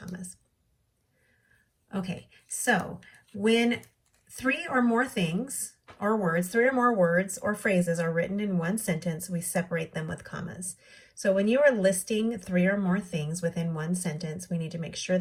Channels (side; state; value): both; identical; correlation 1.00